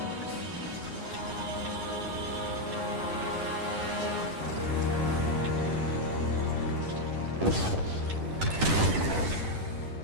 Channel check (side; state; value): left; late; 10 ms